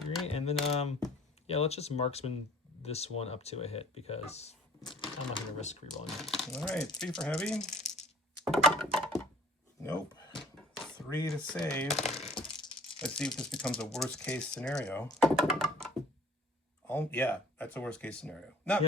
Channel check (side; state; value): both; normal; correlation 0.51